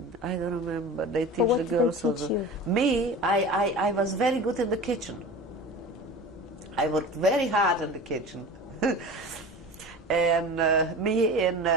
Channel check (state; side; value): normal; both; correlation 0.35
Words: I don't remember. They teach the girls also. You? Me, I was very good in the kitchen. I worked very hard in the kitchen. And me and